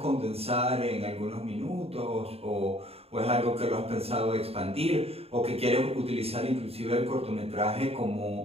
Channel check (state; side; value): late; left; 0.29 ms